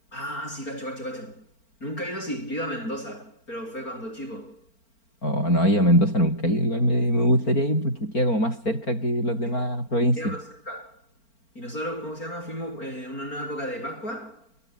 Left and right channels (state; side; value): late; right; 4.4 ms